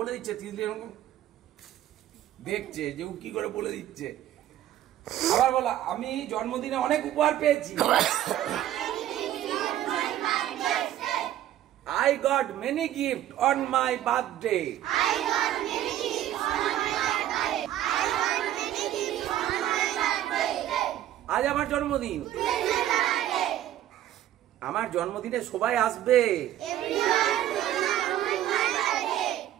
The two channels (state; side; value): quieter; left; 12.5 dB